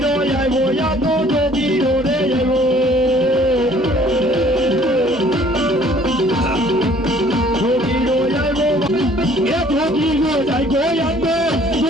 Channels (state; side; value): noise; right; hum, 17 dB below the sound